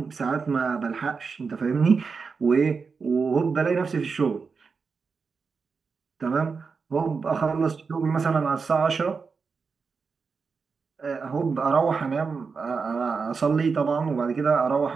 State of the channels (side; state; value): left; quieter; 5.1 dB